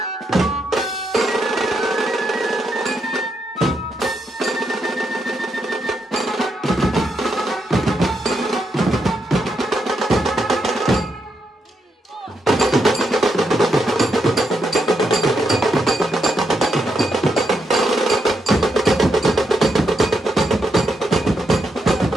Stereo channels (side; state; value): both; normal; correlation 0.81